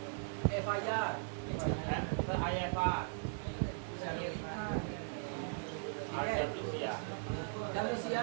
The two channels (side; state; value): left; silent; digital silence